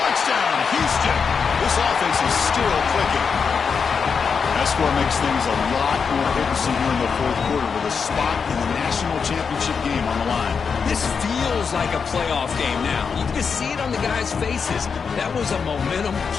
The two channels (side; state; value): right; quieter; 5.9 dB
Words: Houston. This offense is still clicking. That score makes things a lot more interesting here in the fourth quarter with a spot in the national championship game on the line. This feels like a playoff game now. You can just see it on the guys' faces. That was a momentum